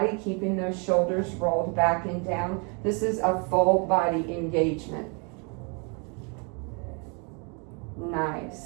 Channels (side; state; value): left; quieter; 34.8 dB